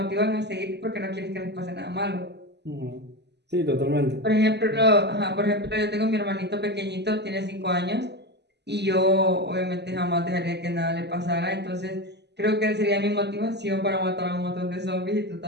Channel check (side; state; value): left; late; 0.50 ms